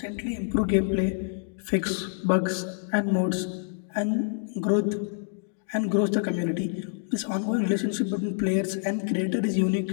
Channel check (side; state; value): right; silent; 60 dB below the other